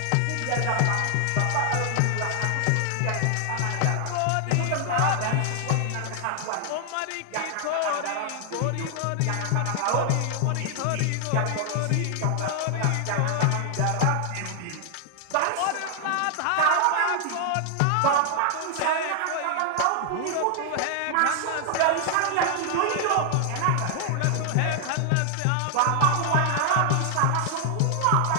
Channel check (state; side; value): different; both; correlation 0.00